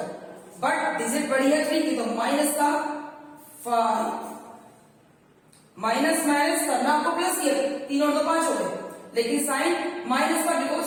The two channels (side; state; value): both; identical; correlation 1.00